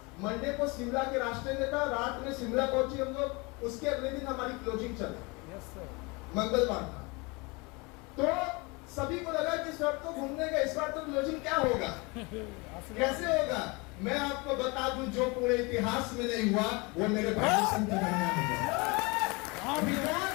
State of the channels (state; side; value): quieter; right; 27.3 dB